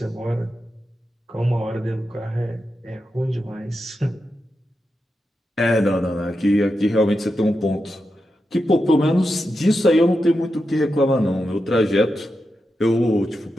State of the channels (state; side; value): normal; both; correlation 0.88